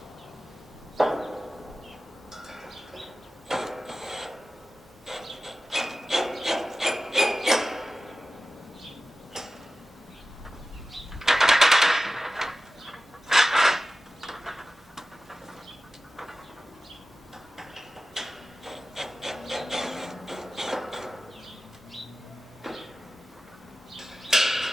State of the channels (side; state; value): both; normal; correlation 0.94